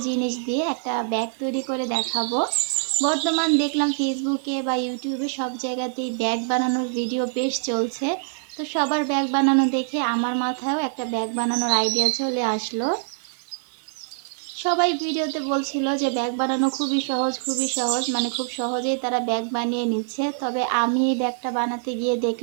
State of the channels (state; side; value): silent; left; digital silence